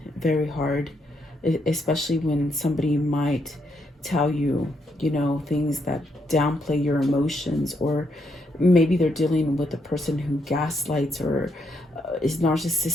very hard, especially when somebody might tell you, you know, things that downplay your emotions, or maybe they're dealing with a person who gaslights or is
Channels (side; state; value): both; normal; correlation 0.77